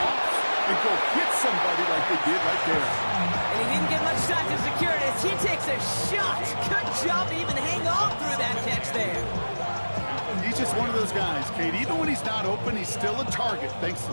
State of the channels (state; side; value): inverted; both; correlation -1.00